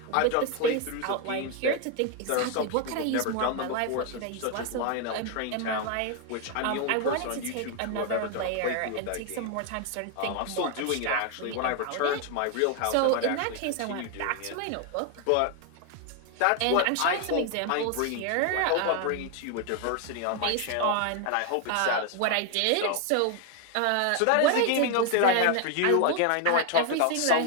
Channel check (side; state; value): both; different; correlation 0.01